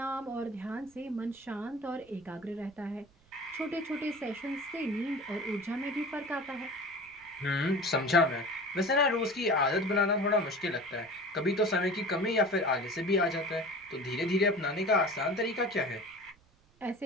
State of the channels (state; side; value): noise; right; rumble, 30 dB below the sound